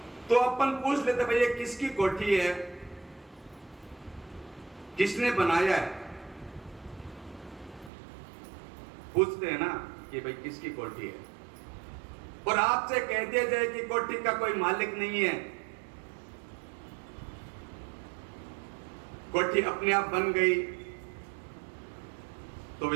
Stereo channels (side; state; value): left; drops out; at 7.9 s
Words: तो अपन पूछ लेते भाई ये किसकी कोठी है, किसने बनाया है? पूछते हैं ना कि भाई किसकी कोठी है। और आपसे कह दिया जाए कि कोठी का कोई मालिक नहीं है, कोठी अपने आप बन गई, तो